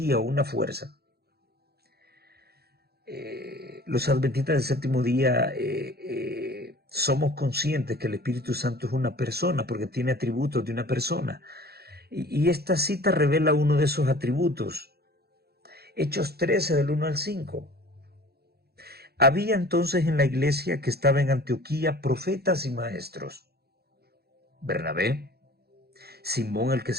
o una fuerza. Los adventistas del séptimo día somos conscientes que el Espíritu Santo es una persona porque tiene atributos de una persona. Y esta cita revela uno de esos atributos. Hechos 13 del 1 al 5. Había entonces en la iglesia que estaba en Antioquía profetas y maestros. Bernabé, Simón el que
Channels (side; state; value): left; late; 0.46 ms